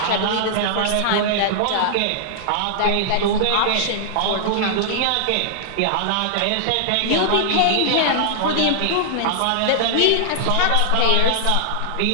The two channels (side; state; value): both; different; correlation -0.01